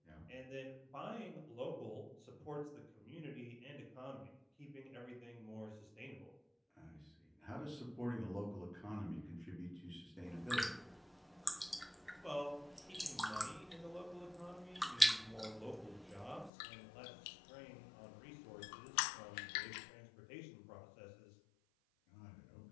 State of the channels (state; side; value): drops out; right; at 16.5 s